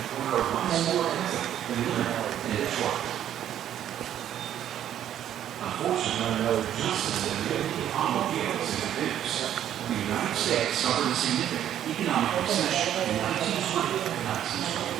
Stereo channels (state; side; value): quieter; left; 10.8 dB